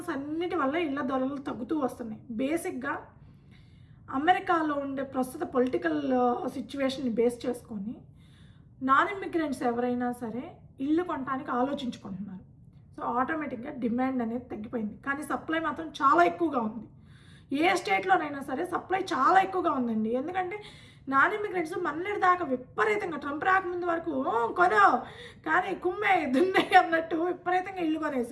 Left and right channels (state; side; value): identical; both; correlation 1.00